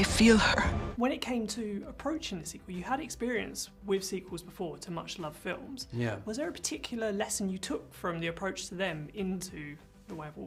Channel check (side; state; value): both; identical; correlation 1.00